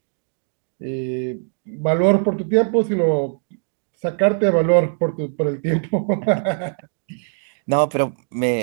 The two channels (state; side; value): silent; left; digital silence